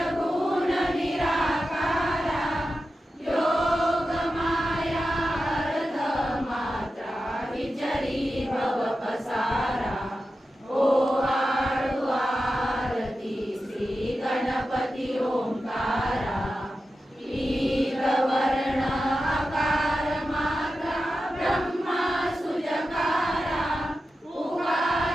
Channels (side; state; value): both; normal; correlation 0.92